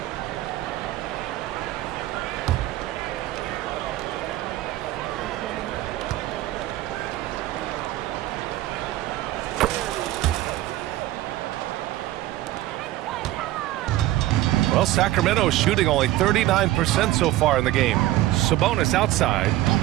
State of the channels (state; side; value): quieter; left; 15.7 dB